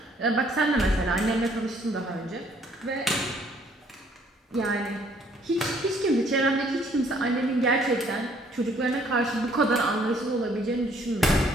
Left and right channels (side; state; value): both; normal; correlation 0.63